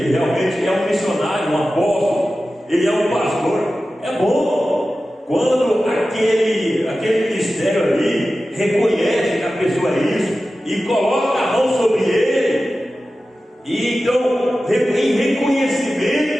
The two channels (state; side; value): normal; both; correlation 0.94